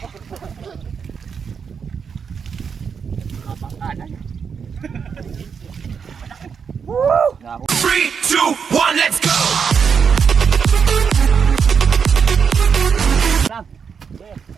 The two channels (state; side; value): quieter; left; 6.4 dB